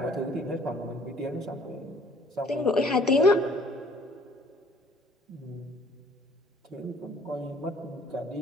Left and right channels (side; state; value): both; normal; correlation 0.56